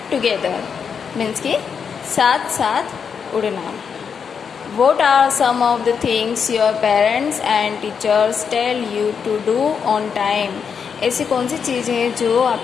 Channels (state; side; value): quieter; right; 6.6 dB